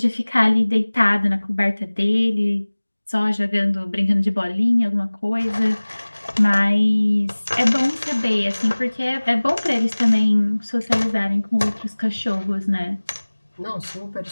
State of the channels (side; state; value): both; inverted; correlation -1.00